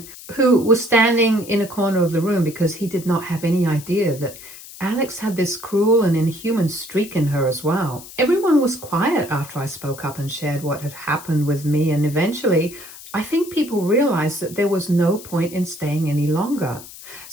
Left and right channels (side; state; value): left; noise; hiss, 16 dB below the sound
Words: who was standing in a corner of the room because he did not have any idea that Alex had this cruel and inhuman streak in her as well. Everyone was quiet after I spoke up and shared what had happened with me, and eventually I think people realized that there was no point in staying any longer.